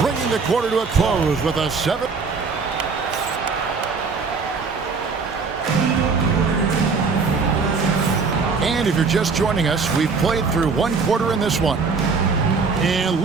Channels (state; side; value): quieter; left; 4.8 dB